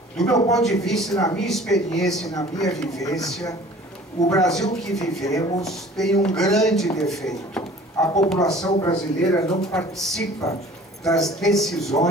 Do meu ponto de vista, na minha experiência e na minha vivência, o Brasil que vivemos tem um grande defeito. A população brasileira não participa das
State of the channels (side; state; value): both; normal; correlation 0.48